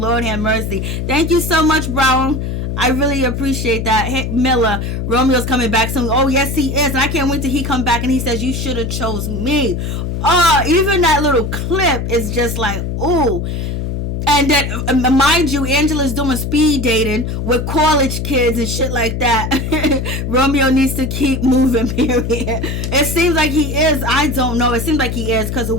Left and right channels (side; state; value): left; noise; hum, 3 dB below the sound